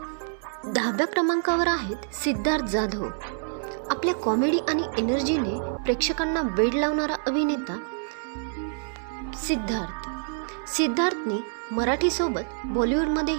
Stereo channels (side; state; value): left; silent; 60 dB below the other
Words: 10व्या क्रमांकावर आहेत सिद्धार्थ जाधव. आपल्या कॉमेडी आणि एनर्जीने प्रेक्षकांना वेड लावणारा अभिनेता सिद्धार्थने मराठीसोबत